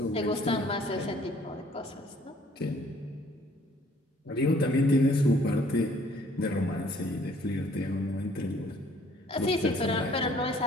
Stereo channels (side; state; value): both; normal; correlation 0.59